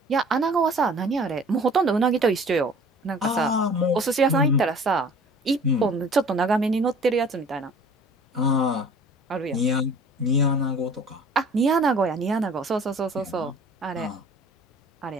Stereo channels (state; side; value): normal; both; correlation 0.48